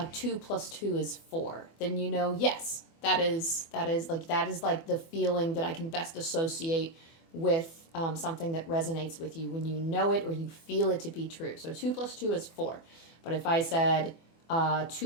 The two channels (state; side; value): late; right; 24 ms